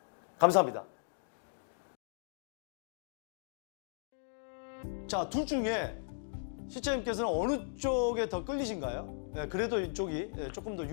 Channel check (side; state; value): right; silent; digital silence